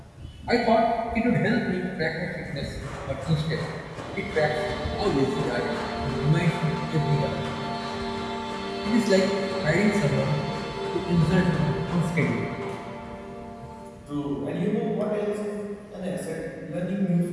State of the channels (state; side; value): identical; both; correlation 1.00